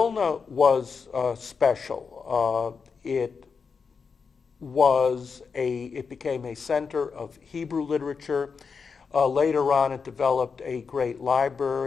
was special. It became a center of Hebrew literature. Later on, it developed a great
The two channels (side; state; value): right; quieter; 5.5 dB